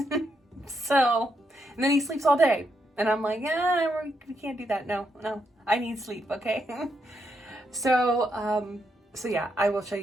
So, and then he sleeps all day. And I'm like, we can't do that. No, I need sleep, okay? So yeah, I will show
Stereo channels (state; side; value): normal; both; correlation 0.79